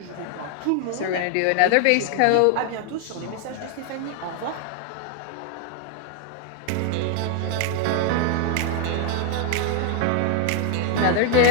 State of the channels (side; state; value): both; different; correlation 0.00